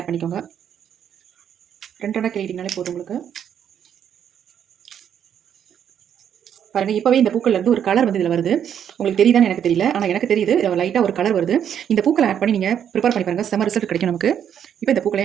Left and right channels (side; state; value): left; quieter; 9.0 dB